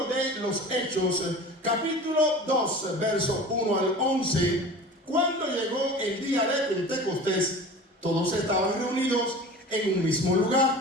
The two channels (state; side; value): normal; both; correlation 0.37